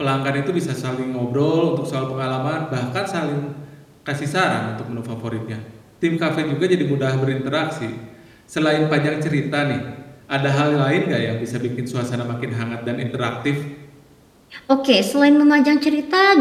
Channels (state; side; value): identical; both; correlation 1.00